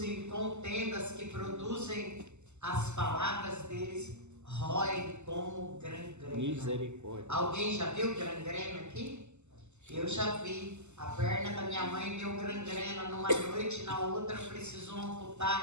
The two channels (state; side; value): late; left; 0.83 ms